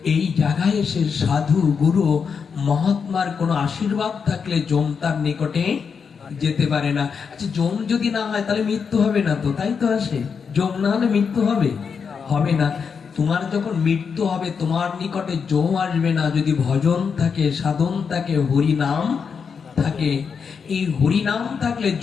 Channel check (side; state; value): right; quieter; 6.1 dB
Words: এই জায়গায় এসে সাধু গুরু মহাত্মার কোনো আশীর্বাদ থাকলে যম তার নিকটে যেতে পারে না। আচ্ছা যম যদি না হয় তাহলে মৃত্যু হবে না তো, তাই তো আসে? যম না হলে মৃত্যু হবে? হবে না। তোমার যখন মৃত্যু হবে তোমার নিকটে যম আসবে না, যদি ভজন থাকে, সাধন থাকে, হরি নাম থাকে। এই হরি নাম থাকলে